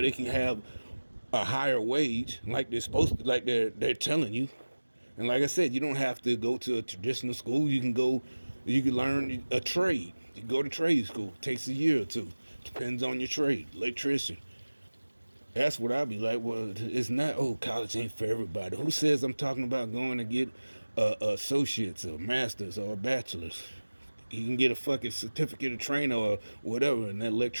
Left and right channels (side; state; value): both; inverted; correlation -1.00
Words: they can have a higher wage, like they're supposed to, like they're telling you. And like I said, you don't have to go to a traditional school. You can learn a trade. You go to trade school. It takes a year or two. Depends on your trade. Electrician. That's what I'd be like. Well, it's not. Oh, college ain't for everybody. Who says I'm talking about going to get associates or masters or bachelors? You can get a fucking certificate of training or whatever, an